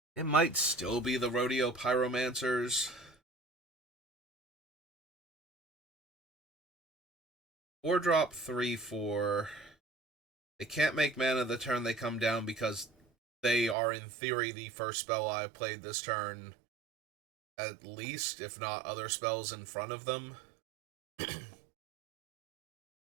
It might still be the Rodeo Pyromancers. 4-drop 3, 4. They can't make mana the turn they come down because they are, in theory, the first spell I've played this turn. At least, if not other spells in front of them.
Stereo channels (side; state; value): left; drops out; at 13.8 s